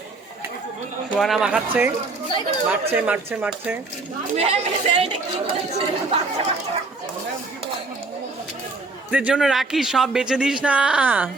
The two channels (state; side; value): quieter; left; 3.6 dB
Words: সুহানা মাখাচ্ছে, মাখছে মাখছে মাখছে। স্যার এটা কি বলছে? এদের জন্য রাখি, সব বেচে দিস না।